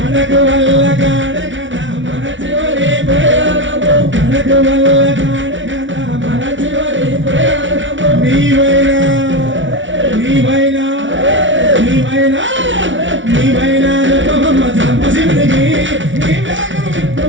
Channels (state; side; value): late; left; 0.56 ms